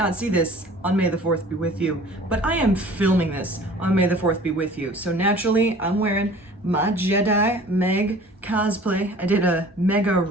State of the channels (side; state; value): both; normal; correlation 0.47